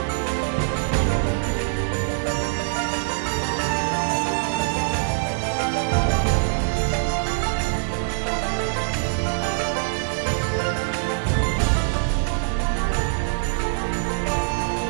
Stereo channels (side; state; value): left; silent; digital silence